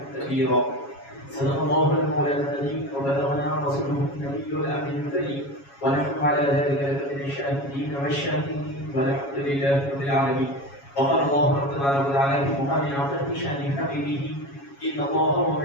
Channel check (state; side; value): late; right; 7.2 ms